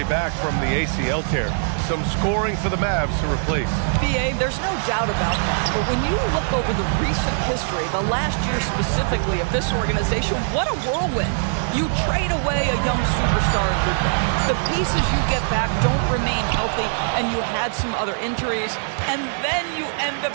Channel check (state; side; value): silent; left; digital silence